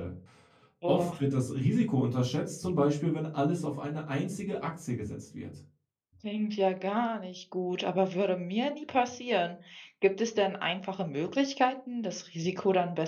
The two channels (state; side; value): identical; both; correlation 1.00